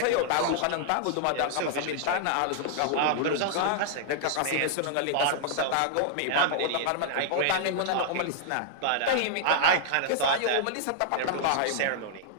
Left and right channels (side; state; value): both; different; correlation -0.01